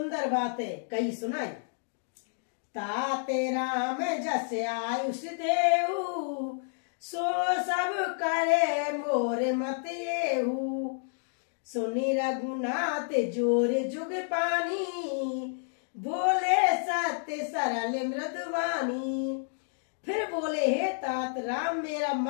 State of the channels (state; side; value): silent; right; digital silence